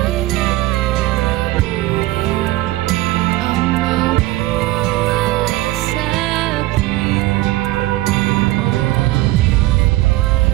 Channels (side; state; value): left; quieter; 17.7 dB